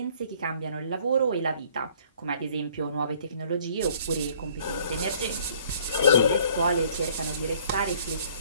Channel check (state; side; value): inverted; both; correlation -0.58